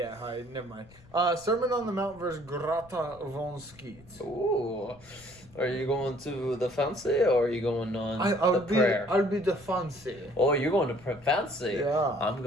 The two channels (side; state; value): left; noise; rumble, 24 dB below the sound